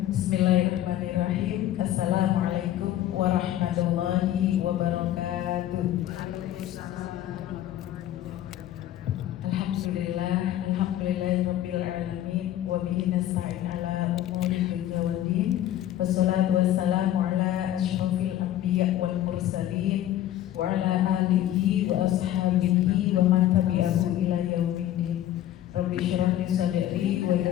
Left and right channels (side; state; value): right; quieter; 12.6 dB